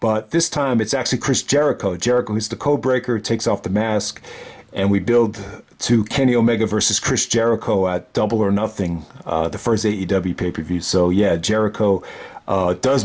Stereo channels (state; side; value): identical; both; correlation 1.00